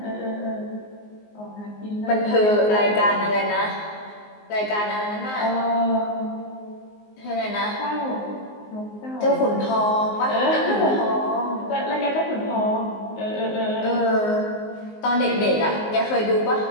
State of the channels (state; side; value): late; right; 19 ms